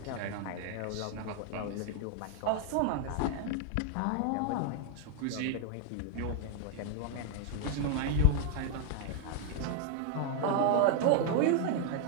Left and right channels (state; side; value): different; both; correlation 0.01